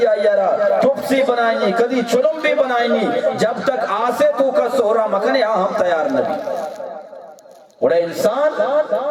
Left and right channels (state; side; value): identical; both; correlation 1.00